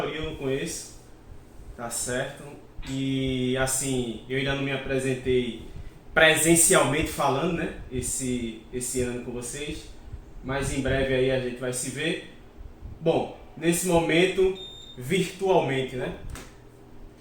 eu não conheço, tá certo? E assim, eu ainda não me apresentei presencialmente falando, né? Esse ano com vocês, mas em breve aí a gente vai se ver. Bom, nesse momento, virtualmente, né?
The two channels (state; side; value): identical; both; correlation 1.00